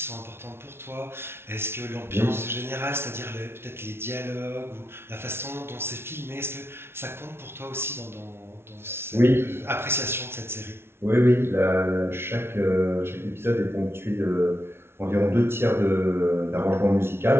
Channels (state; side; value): late; left; 0.12 ms